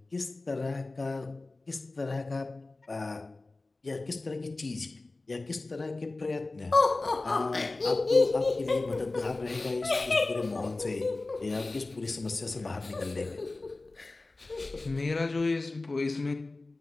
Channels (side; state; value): right; quieter; 3.2 dB